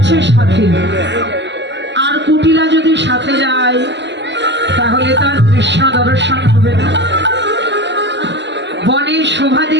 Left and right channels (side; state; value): left; late; 0.51 ms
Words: সাথে। আর কুটিলা যদি সাথে যায় তাহলে তার কৃষ্ণ দর্শন হবে না। বনের শোভা